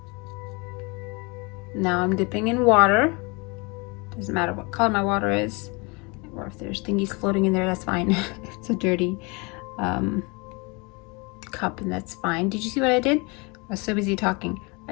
Now I'm dipping in water. Doesn't matter what color my water is, or if there's thingies floating in there, that's fine. It's a dirty cup, and that's fine. Did you see what I did? I was so busy talking.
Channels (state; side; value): quieter; right; 29.0 dB